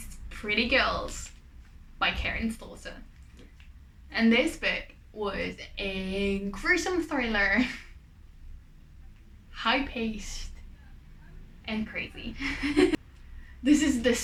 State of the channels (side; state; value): both; identical; correlation 1.00